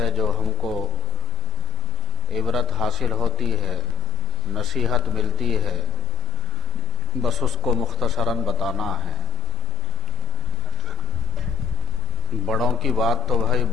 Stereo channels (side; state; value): both; normal; correlation 0.63